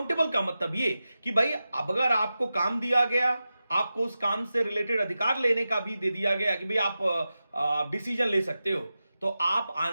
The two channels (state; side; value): inverted; both; correlation -0.93